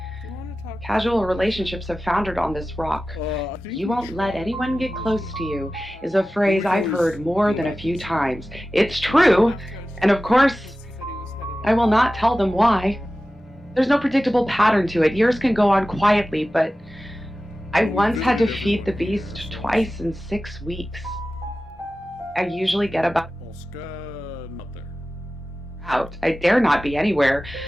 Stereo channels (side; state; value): both; normal; correlation 0.95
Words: Do you want to talk? Casual relationships have foundered on this rock. You won't let anyone get close to you is a phrase I've heard more than a few times. It's true, and of course, I will not tell them why. There's no predictable pattern to it. Years can go on quietly, but I once had to feed the beast twice in 6 weeks. I usually get about out. I dare not be anywhere